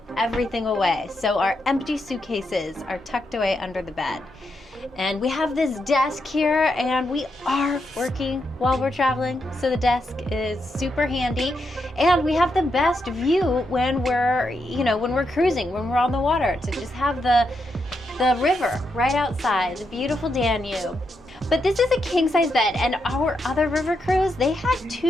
everything away, so our empty suitcases are tucked away under the bed. And we have this desk here, and we are working while we're traveling, so the desk is super handy. And we have the best view when we're, when we're cruising, when we're on the water, to just have the river right outside, the beautiful Danube. But this is a king-size bed, and our other river cruise, they had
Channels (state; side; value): normal; both; correlation 0.83